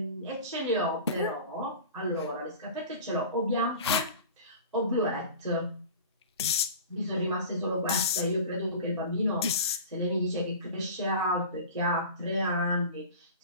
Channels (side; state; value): both; inverted; correlation -0.37